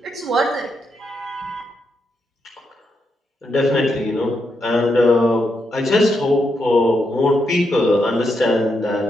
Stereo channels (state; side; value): normal; both; correlation 0.82